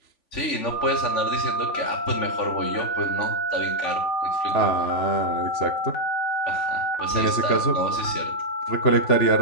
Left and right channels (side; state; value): right; late; 3.5 ms